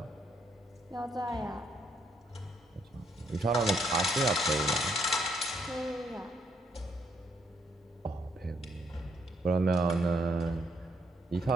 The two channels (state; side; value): normal; both; correlation 0.73